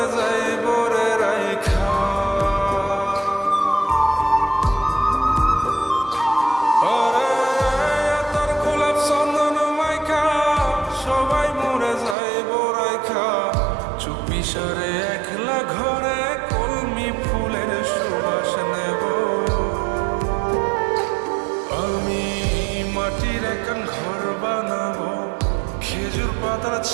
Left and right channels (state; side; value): drops out; left; at 12.2 s